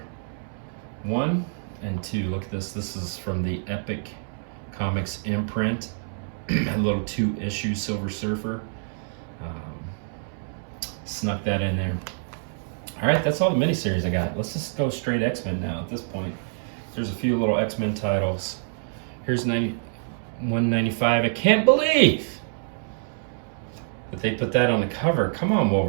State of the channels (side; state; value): left; silent; 61 dB below the other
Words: 1 and 2. Look at this. This is from the Epic Comics imprint. A little 2-issue Silver Surfer. Snuck that in there. All right, that's all the miniseries I got. Let's just go straight X-Men now at this point. There's a few little X-Men titles. Here's 195. I can't believe but they put that on the cover. Come on,